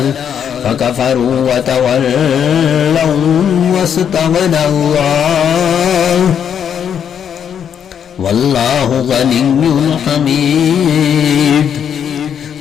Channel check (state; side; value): quieter; right; 8.3 dB